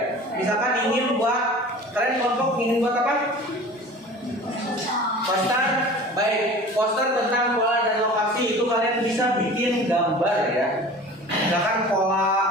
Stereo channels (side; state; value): both; normal; correlation 0.40